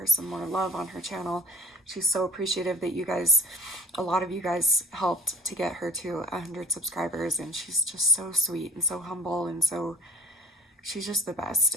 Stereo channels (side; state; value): both; normal; correlation 0.48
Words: some more love on her channel, she's so appreciative that a lot of you guys helped to get her to 100 subscribers. And she's just so sweet and so humble and she's just the best.